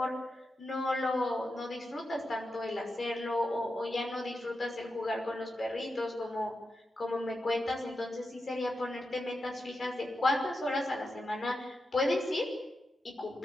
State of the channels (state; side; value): normal; both; correlation 0.89